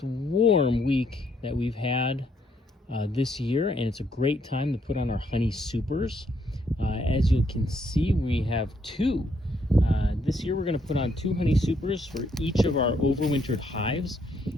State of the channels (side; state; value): both; normal; correlation 0.72